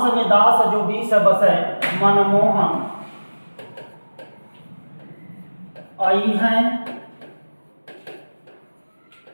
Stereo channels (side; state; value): both; inverted; correlation -1.00